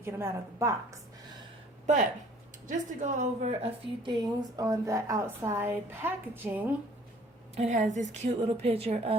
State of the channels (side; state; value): both; normal; correlation 0.54